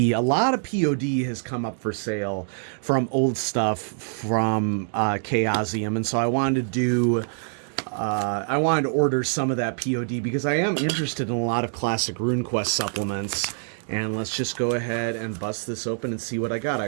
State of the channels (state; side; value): silent; left; digital silence